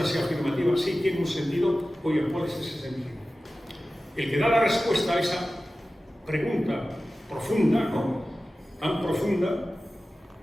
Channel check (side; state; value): both; normal; correlation 0.95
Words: sea afirmativa, sí tiene un sentido. Oye, ¿cuál es ese sentido? El que da la respuesta a esa pregunta profunda, ¿no? Tan profunda,